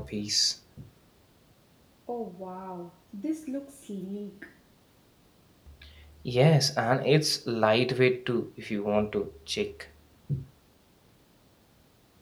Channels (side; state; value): both; identical; correlation 1.00